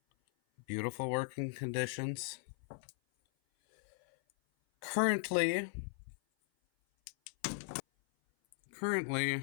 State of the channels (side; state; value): right; silent; 53 dB below the other